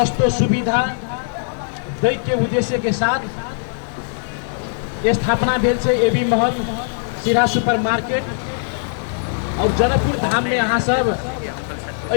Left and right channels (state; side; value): silent; right; 66 dB below the other